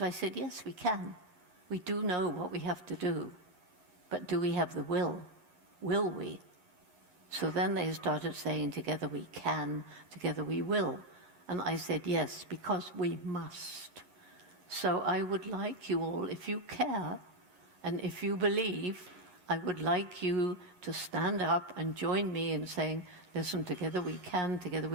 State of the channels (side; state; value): left; late; 11 ms